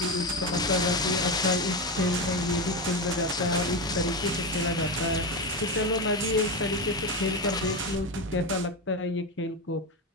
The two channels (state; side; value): normal; both; correlation 0.16